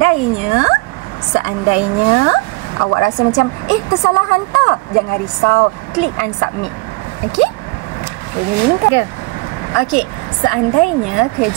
Seandainya awak rasa macam tersalah hantar, jangan risau. Klik unsubmit. Okey? Okey, seandainya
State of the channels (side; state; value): left; quieter; 25.8 dB